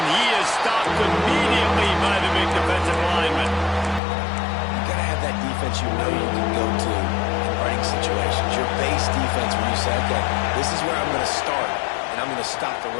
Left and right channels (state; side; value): drops out; right; at 4.0 s